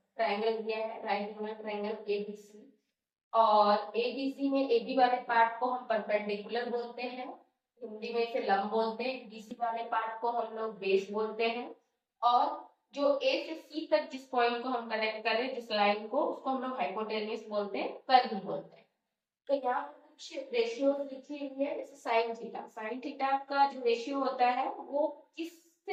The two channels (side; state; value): both; identical; correlation 1.00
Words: ट्रायंगल दिया है, राइट एंगल ट्रायंगल एबीसी, और एबीसी में एबी वाले पार्ट को हम परपेंडिकुलर बोलते हैं, हिंदी में इसे लंब बोलते हैं। बीसी वाले पार्ट को हम लोग बेस बोलते हैं। और जो ए से सी तक जिस पॉइंट को हम कनेक्ट कर रहे हैं, जिस लाइन को, उसको हम लोग हाइपोटेन्यूस बोलते हैं, कर्व बोलते हैं। तो यहाँ पर कुछ रेशियो लिखी हुई है, जैसे साइन थीटा। साइन थीटा का जो रेशियो होता है वो